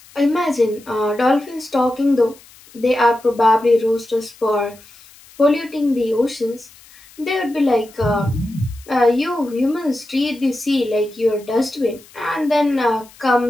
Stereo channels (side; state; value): left; noise; hiss, 24 dB below the sound